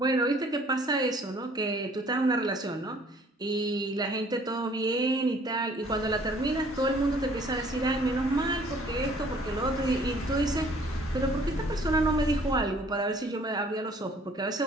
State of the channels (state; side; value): normal; both; correlation 0.57